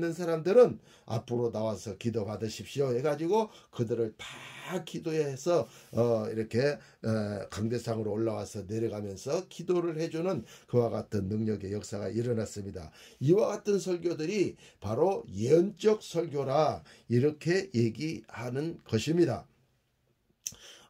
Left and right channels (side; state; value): both; identical; correlation 1.00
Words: 사람들은 앞으로 나와서 기도 받으십시오 해가지고 그들을 다 기도해서 이렇게 강대상으로 올라와서 내려가면서 기도를 해주는 그와 같은 능력의 역사가 일어났습니다. 이와 같은 설교들이 바로 예언적 설교라 이렇게 얘기하는 것입니다.